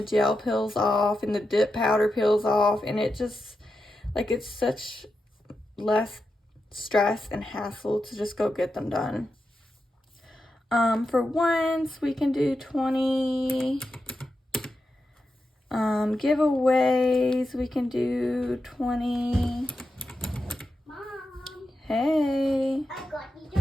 gel peels off, and the dip powder peels off, and it just, like, it's such less stress and hassle to just go get them done. For once, we can do 20. Giveaways, we can do 20. Mom. Hey. I got you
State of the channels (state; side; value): normal; both; correlation 0.88